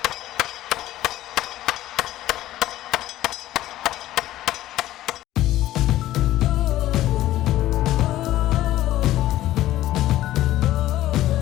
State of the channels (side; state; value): right; quieter; 14.6 dB